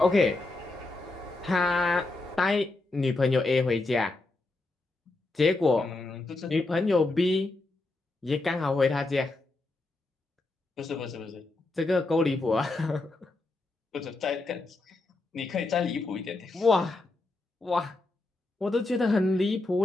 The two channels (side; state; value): right; quieter; 3.1 dB